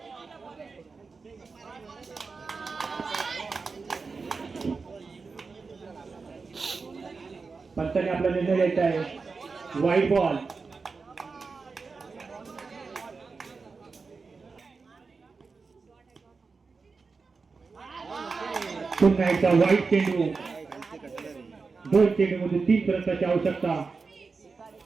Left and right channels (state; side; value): quieter; left; 4.5 dB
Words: पंचाने आपला निर्णय घ्यायचा आहे. वाईट बॉल. पुन्हा एकदा वाईट चेंडू. 2 चेंडू मध्ये 3 रनची आवश्यकता.